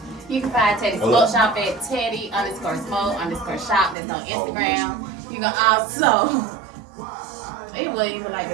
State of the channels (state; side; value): drops out; left; at 4.0 s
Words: You can find Teddy Smoke Shop at Teddy_Smoke_Shop. That's on Instagram. You can also. It wasn't even like